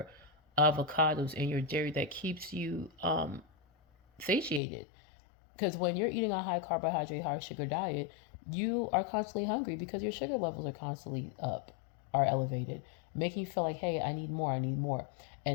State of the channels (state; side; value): drops out; right; at 4.6 s